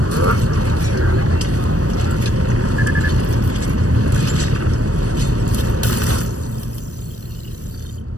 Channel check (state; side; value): late; left; 0.66 ms